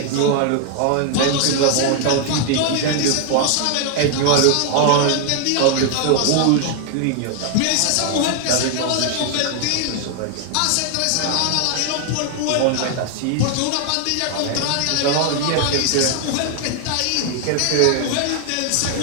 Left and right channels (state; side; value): different; both; correlation 0.00